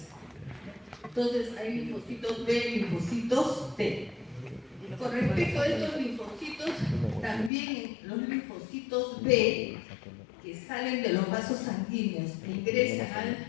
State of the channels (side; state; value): right; drops out; at 7.5 s